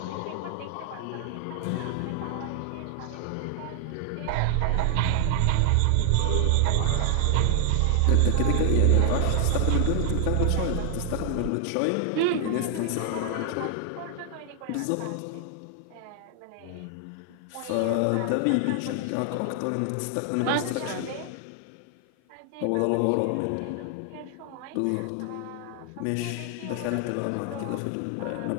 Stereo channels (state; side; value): different; both; correlation 0.00